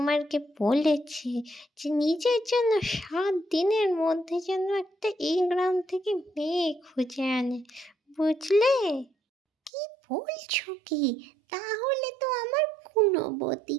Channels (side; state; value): left; drops out; at 9.7 s